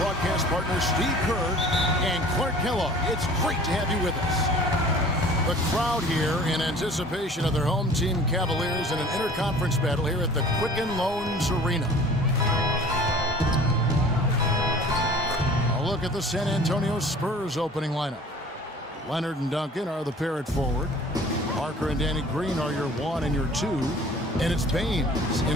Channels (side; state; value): both; normal; correlation 0.47